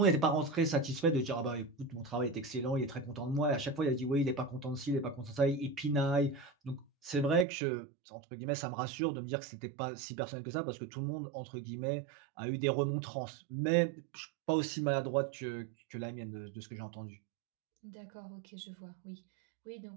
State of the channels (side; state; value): left; drops out; at 7.5 s